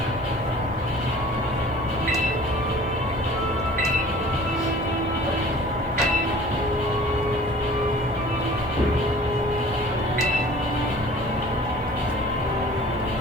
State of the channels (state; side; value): normal; both; correlation 0.47